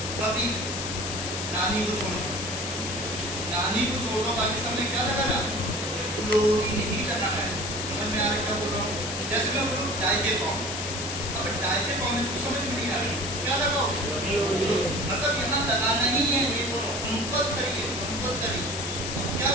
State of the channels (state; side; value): noise; left; hiss, 4 dB below the sound